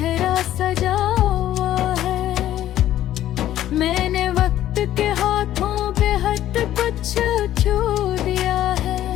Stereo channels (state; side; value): quieter; right; 12.7 dB